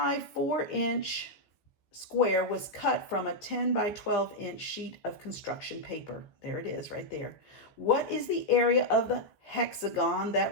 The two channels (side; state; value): right; late; 15 ms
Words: 4 inch square was cut from a 10 by 12 inch sheet of construction paper. There it is right there. What is the area of the hexagon